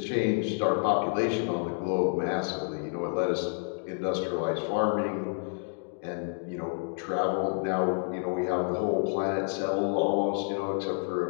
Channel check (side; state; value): right; silent; 58 dB below the other